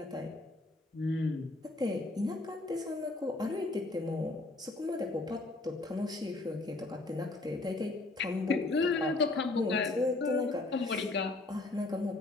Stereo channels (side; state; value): right; quieter; 3.0 dB